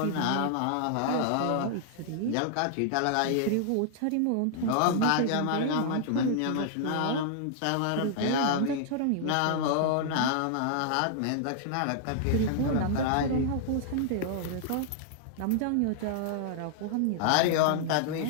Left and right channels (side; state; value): both; different; correlation -0.01